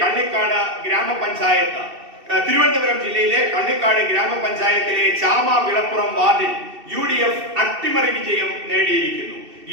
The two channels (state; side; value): late; left; 2.7 ms